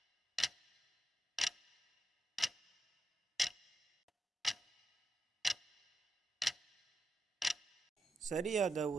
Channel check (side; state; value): both; normal; correlation 0.86